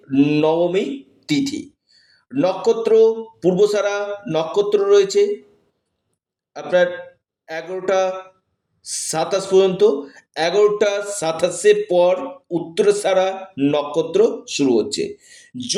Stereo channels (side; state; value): both; identical; correlation 1.00